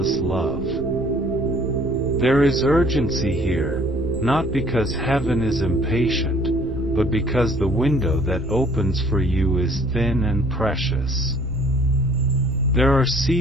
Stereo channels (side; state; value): right; noise; rumble, 12 dB below the sound